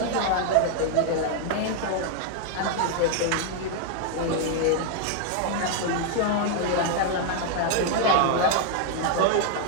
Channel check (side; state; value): both; different; correlation 0.00